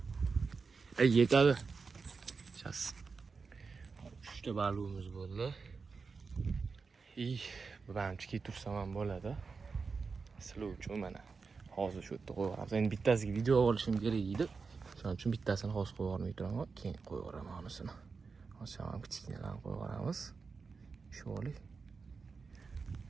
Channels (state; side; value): quieter; left; 4.8 dB